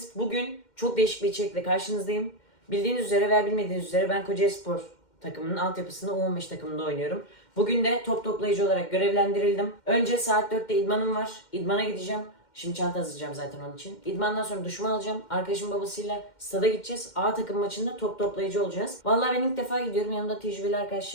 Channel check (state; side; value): late; right; 2.1 ms